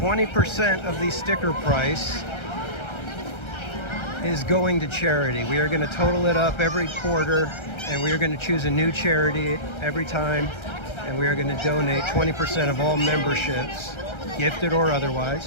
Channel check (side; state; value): right; late; 1.3 ms